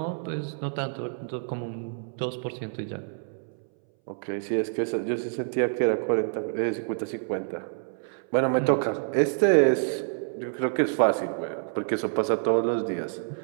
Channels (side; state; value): left; silent; 60 dB below the other